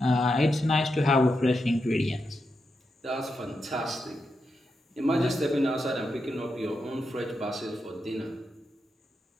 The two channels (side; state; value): both; normal; correlation 0.86